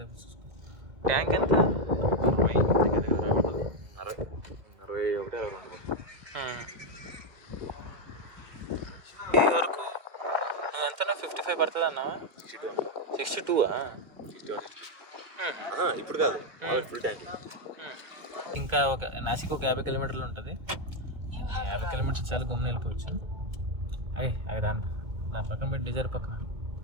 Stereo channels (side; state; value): left; late; 2.2 ms